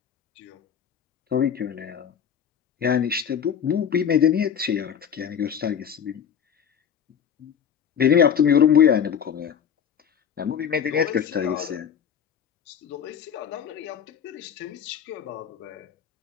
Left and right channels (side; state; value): right; quieter; 8.1 dB